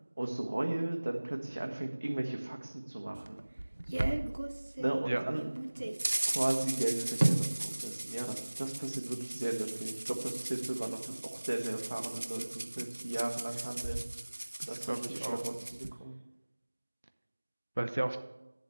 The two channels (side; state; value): both; inverted; correlation -1.00